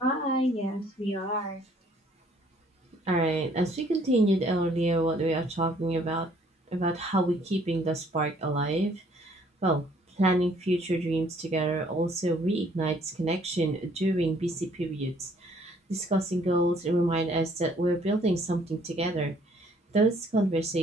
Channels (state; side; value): normal; both; correlation 0.61